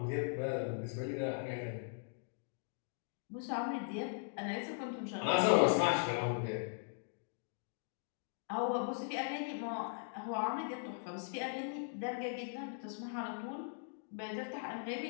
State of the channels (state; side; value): silent; right; digital silence